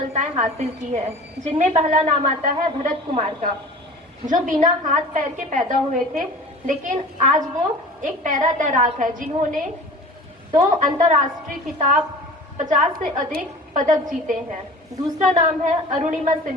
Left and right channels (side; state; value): both; normal; correlation 0.40